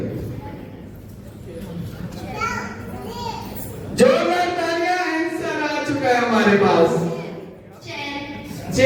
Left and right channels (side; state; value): both; identical; correlation 1.00